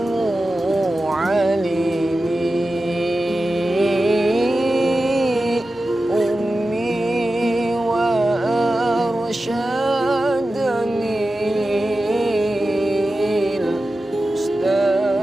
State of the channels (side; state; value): both; normal; correlation 0.93